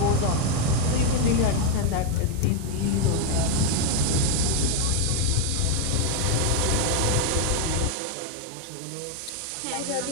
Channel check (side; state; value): both; different; correlation 0.01